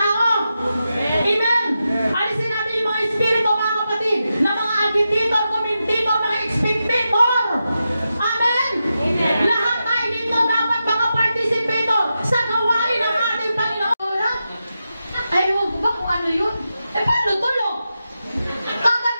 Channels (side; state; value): both; inverted; correlation -0.89